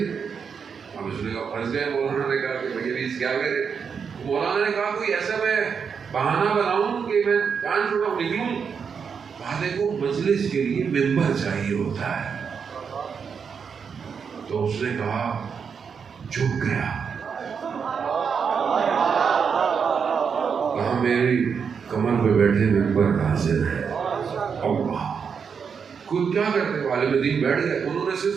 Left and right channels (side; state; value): left; quieter; 6.4 dB